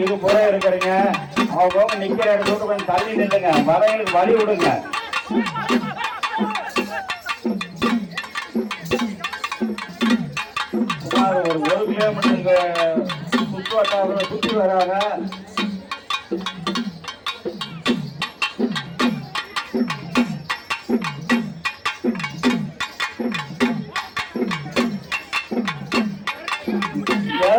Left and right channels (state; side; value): identical; both; correlation 1.00